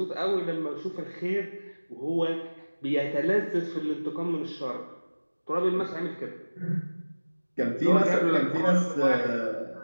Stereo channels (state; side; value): inverted; both; correlation -1.00